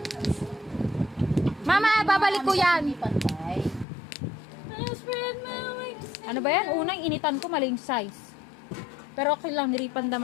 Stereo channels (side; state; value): right; drops out; at 3.9 s